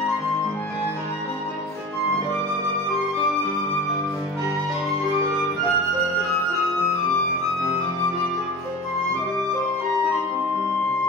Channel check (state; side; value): normal; both; correlation 0.35